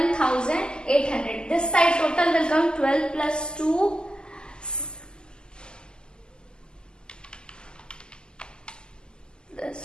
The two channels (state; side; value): late; right; 0.046 ms